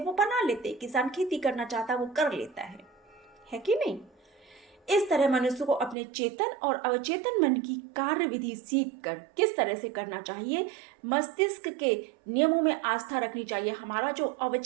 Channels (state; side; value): drops out; left; at 6.0 s